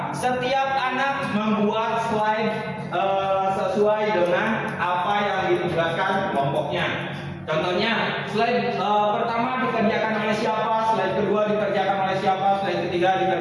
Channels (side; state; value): both; identical; correlation 1.00